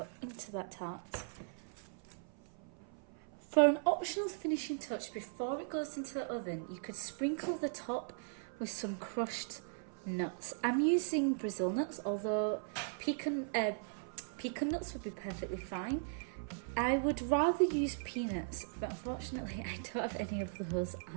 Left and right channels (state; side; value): silent; left; 52 dB below the other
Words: into that tart. For an optional finishing touch before it goes into the oven, you could sprinkle the top with some crushed nuts. I'm using Brazil nuts, although pecan nuts would be perfectly fine. I would rather use peanuts, but unfortunately I don't have any of those